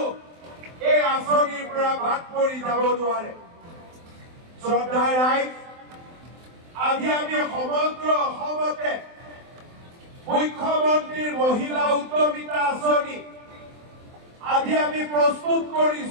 এই আঁচনিৰ পৰা বাদ পৰি যাব নোৱাৰে। শ্ৰদ্ধাৰ ৰাইজ, আজি আমি সমগ্ৰ অসমতে মুখ্যমন্ত্ৰীৰ মহিলা উদ্যমিতা আঁচনি আজি আমি প্ৰস্তুত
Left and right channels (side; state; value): left; late; 23 ms